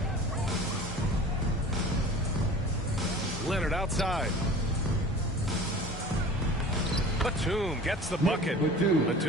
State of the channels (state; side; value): normal; both; correlation 0.41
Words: Leonard outside. Batum gets the bucket.